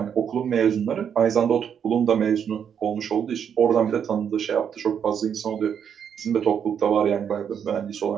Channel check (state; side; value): quieter; left; 8.0 dB